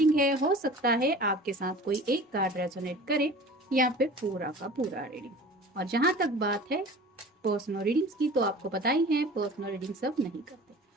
है। हो सकता है आपके साथ कोई एक कार्ड रेजोनेट करे या फिर पूरा का पूरा रीडिंग। और जहां तक बात है पर्सनल रीडिंग्स की, तो आपको पता ही है पर्सनल रीडिंग सब नहीं करते।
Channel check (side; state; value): both; normal; correlation 0.41